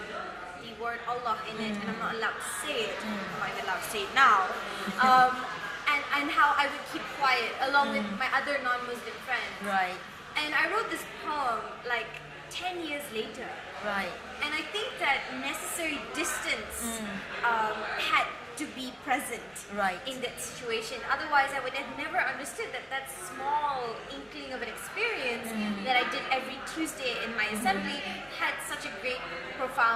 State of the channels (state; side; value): identical; both; correlation 1.00